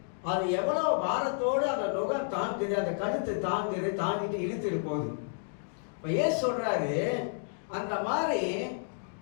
அது எவ்வளவு பாரத்தோடு அந்த நுகம் தாங்குது, அந்த கழுத்து தாங்குது, தாங்கிட்டு இழுத்துட்டு போகுது. இப்ப ஏன் சொல்றாரு, அந்த மாதிரி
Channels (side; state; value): right; silent; digital silence